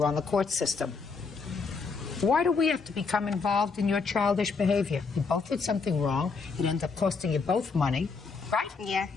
on the court system? Why do we have to become involved in your childish behavior? You both did something wrong. It ended up costing you both money, right? Yeah.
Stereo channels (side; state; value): right; quieter; 4.7 dB